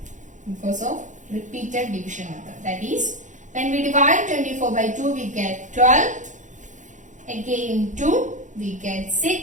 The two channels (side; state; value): left; late; 0.36 ms